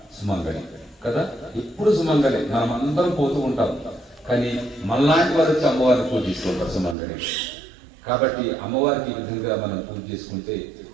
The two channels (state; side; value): drops out; left; at 7.0 s